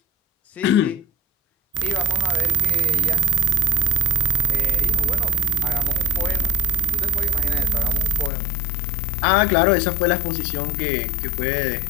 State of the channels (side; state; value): right; drops out; at 8.3 s